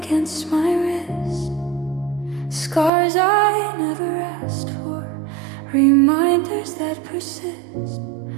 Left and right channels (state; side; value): drops out; left; at 2.9 s